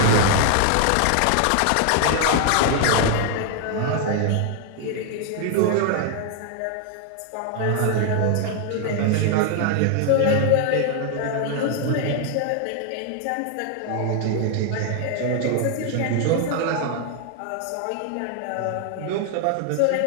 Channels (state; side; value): different; both; correlation 0.00